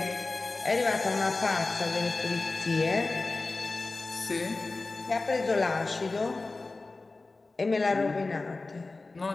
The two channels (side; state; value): right; quieter; 3.5 dB